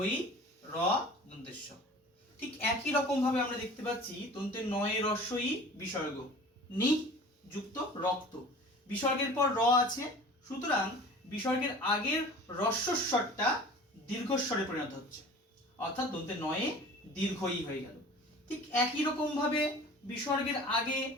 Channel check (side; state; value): both; normal; correlation 0.42